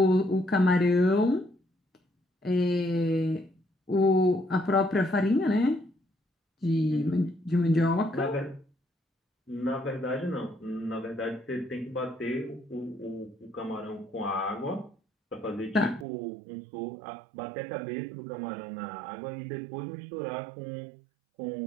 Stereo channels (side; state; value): left; drops out; at 16.1 s